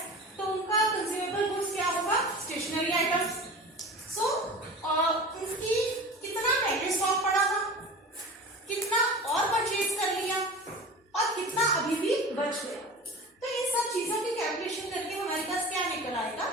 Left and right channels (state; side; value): normal; both; correlation 0.35